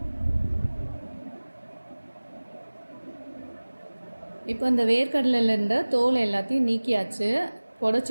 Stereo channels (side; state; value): both; inverted; correlation -1.00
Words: இப்போ இந்த வேர்க்கடலையில் இருந்த தோல் எல்லாத்தையும் நீக்கியாச்சு.